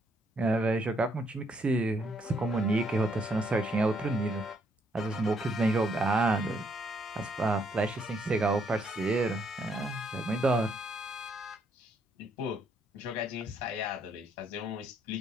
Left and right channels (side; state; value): both; normal; correlation 0.72